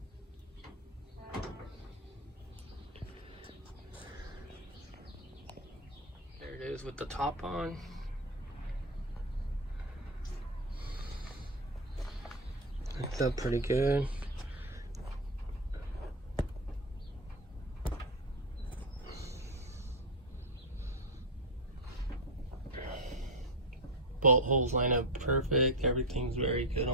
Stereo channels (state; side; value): normal; both; correlation 0.09